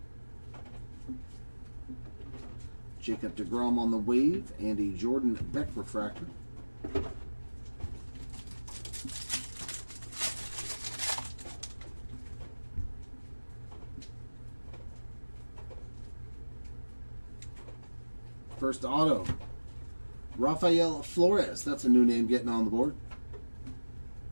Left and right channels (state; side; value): inverted; both; correlation -1.00